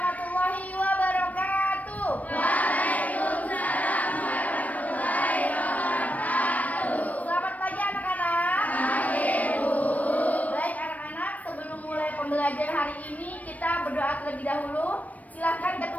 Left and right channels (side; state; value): right; late; 0.071 ms